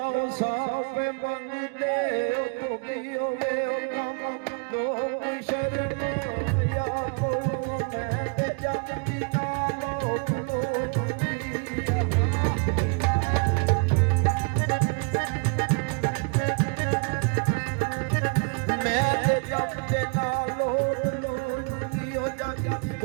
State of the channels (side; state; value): left; quieter; 35.3 dB